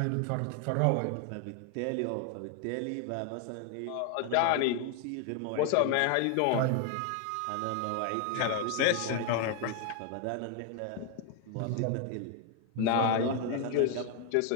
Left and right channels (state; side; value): different; both; correlation 0.01